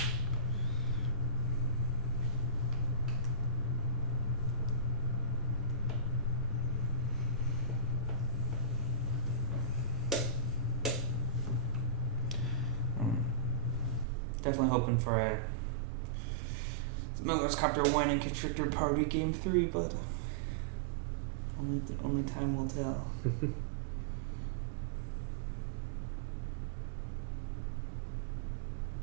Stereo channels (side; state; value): left; drops out; at 14.1 s